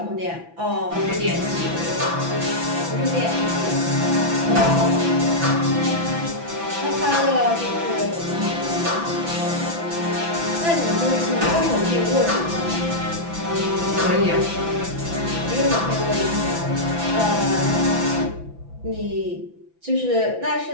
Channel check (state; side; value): late; left; 6.0 ms